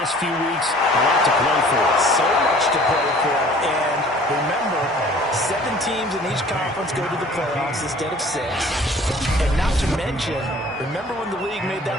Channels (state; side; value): normal; both; correlation 0.51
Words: few weeks, a lot to play for. So much to play for. And remember, 7 teams in each conference go to the playoffs instead of 6. And not to mention, remember when the league made